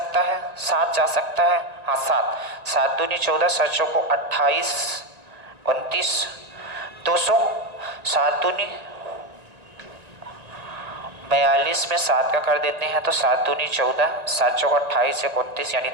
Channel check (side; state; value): left; late; 1.9 ms